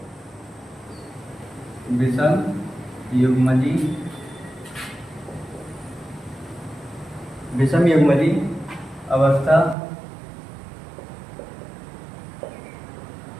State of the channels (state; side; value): drops out; left; at 9.8 s